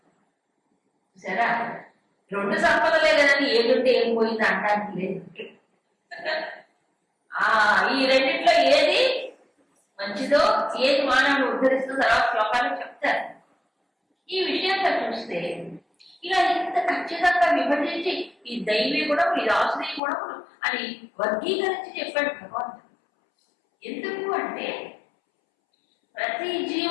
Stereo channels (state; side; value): drops out; right; at 20.0 s